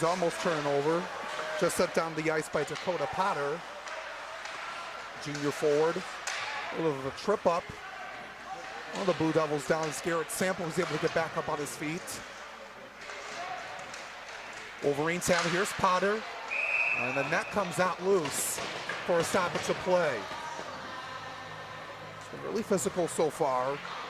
almost turning over. Just set down the ice by Dakota Potter. Junior forward. A little bit of a trip up. One of the Blue Devils down as Garrett Sample was able to get back up on his feet. Wolverines have it. Here's Potter. And the net comes out loose for a stoppage of play. It's been really physical so far.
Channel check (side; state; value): both; identical; correlation 1.00